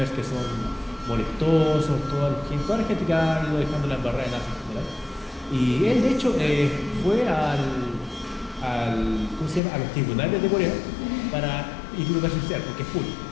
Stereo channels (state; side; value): drops out; right; at 9.6 s